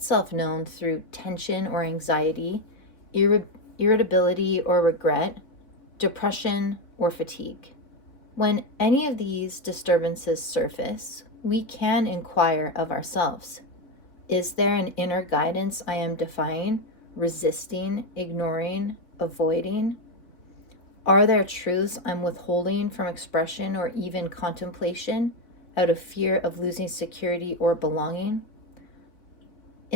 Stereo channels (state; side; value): late; right; 3.4 ms